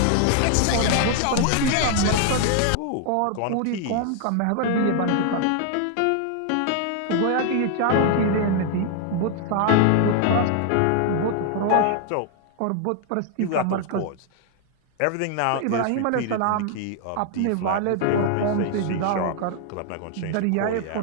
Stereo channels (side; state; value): both; different; correlation 0.00